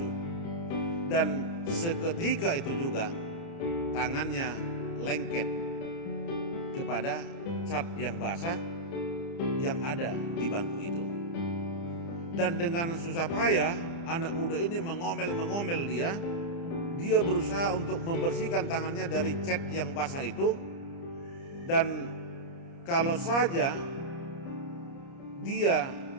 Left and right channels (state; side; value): late; right; 29 ms